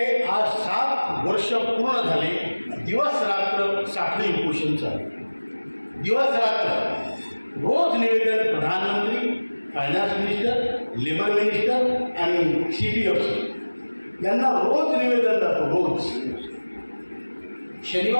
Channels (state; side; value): inverted; both; correlation -1.00